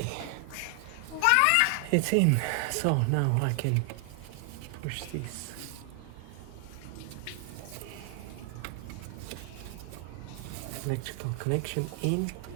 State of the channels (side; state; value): both; different; correlation 0.00